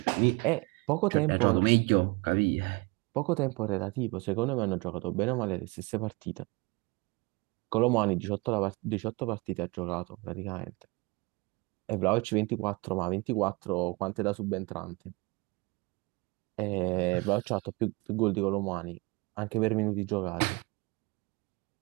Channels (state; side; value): quieter; left; 26.4 dB